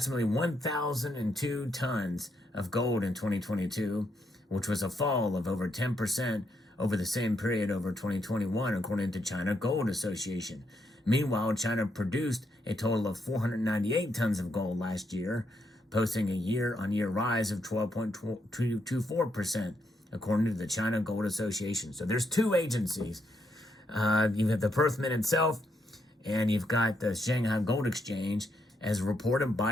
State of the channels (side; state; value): both; normal; correlation 0.78